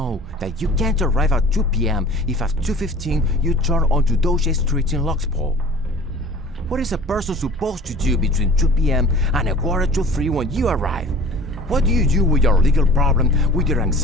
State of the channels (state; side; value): normal; both; correlation 0.44